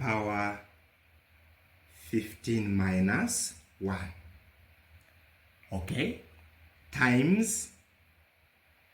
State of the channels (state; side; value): identical; both; correlation 1.00